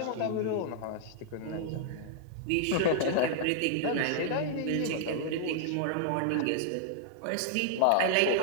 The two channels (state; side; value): different; both; correlation -0.01